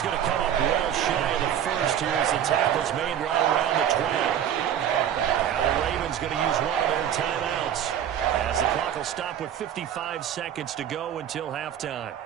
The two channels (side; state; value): left; quieter; 9.8 dB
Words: going to come up well shy of the first here as the tackle's made right around the 20. Now the Ravens going to use one of their timeouts as the clock will stop with 55 seconds to go until halftime.